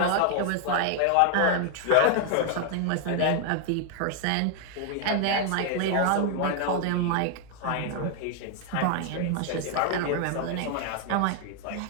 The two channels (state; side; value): different; both; correlation 0.00